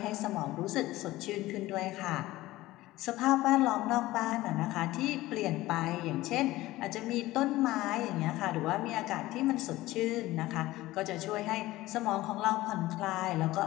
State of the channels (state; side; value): quieter; right; 17.4 dB